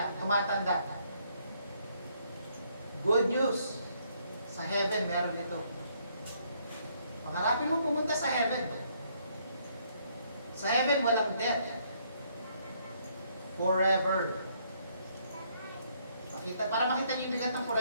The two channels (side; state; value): both; inverted; correlation -0.69